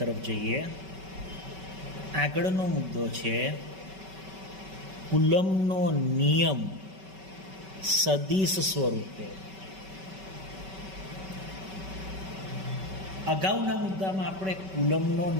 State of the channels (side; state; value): left; late; 5.2 ms